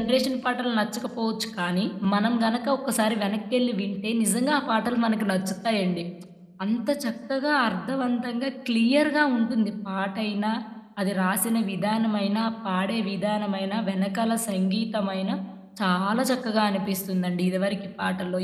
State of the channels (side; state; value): both; identical; correlation 1.00